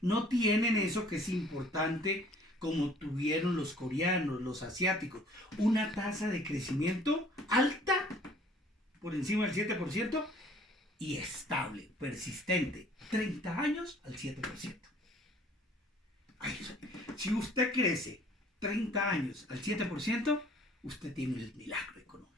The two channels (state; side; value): normal; both; correlation 0.55